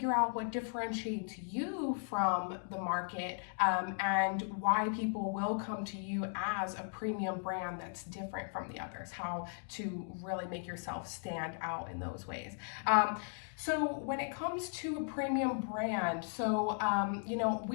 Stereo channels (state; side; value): silent; right; 53 dB below the other